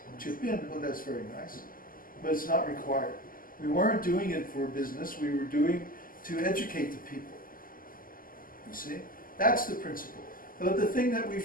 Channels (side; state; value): right; late; 0.41 ms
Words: chip in, well, that's very nice. But it's not required. We weren't doing it for business, we were doing to educate the people. You see? That's the principle. But the thing that we